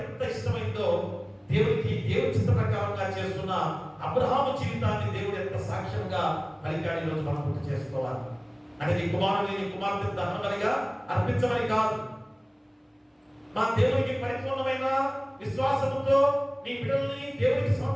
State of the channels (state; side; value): identical; both; correlation 1.00